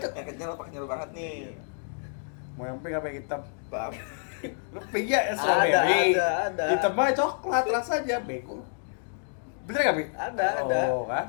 itu. Yang kenyal apa kenyal banget nih? Mau yang pink apa yang hitam? Bang. Lu pink ya Ada, strawberry. ada. Hitam mah coklat rasanya, bego. Bener gak, Bi? Ada. Oh,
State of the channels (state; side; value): silent; right; digital silence